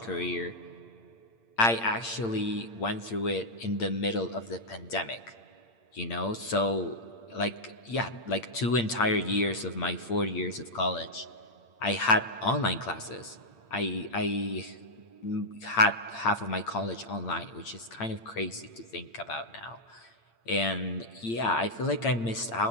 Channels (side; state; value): right; late; 8.7 ms